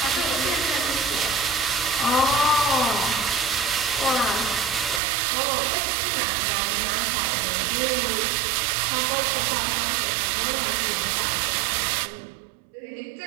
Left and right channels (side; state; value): left; drops out; at 5.0 s